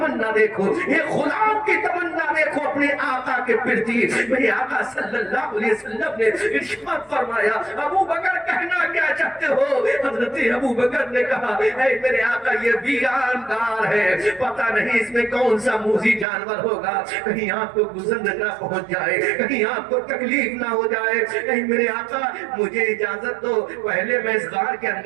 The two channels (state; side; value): drops out; left; at 16.2 s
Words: دیکھو, ایک غلام کی تمنا دیکھو اپنے آقا کے پرتی. میرے آقا صلی اللہ علیہ وسلم نے ارشاد فرمایا, ابو بکر کہنا کیا چاہتے ہو؟ حضرت ابو بکر نے کہا, اے میرے آقا یہ ویران گار ہے, پتہ نہیں اس میں کون سا موذی جانور ہوگا, کہیں آپ کو گزر نہ پہنچ جائے, کہیں آپ کو تکلیف نہ ہو جائے. اے میرے آقا مجھے اجازت دو, پہلے میں اس غار کے